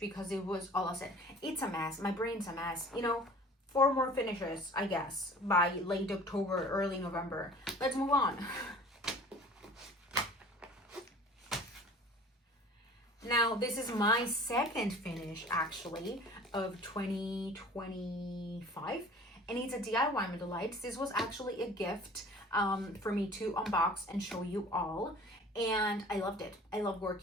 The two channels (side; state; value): both; normal; correlation 0.46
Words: because it was all I said. It's a mess. My brain's a mess. 4 more finishes, I guess, by late October, early November. Let's move on. Now, this is my second finish, actually, of 2025. And it's a DIY Delights. This was actually a gift for me to unbox and show you all. And I loved it. I love